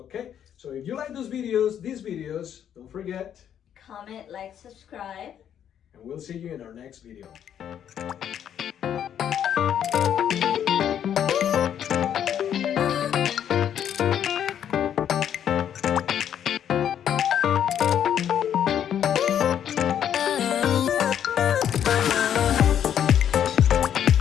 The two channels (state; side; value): quieter; right; 9.5 dB